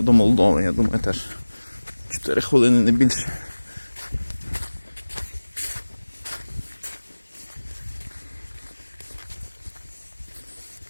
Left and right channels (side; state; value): both; inverted; correlation -1.00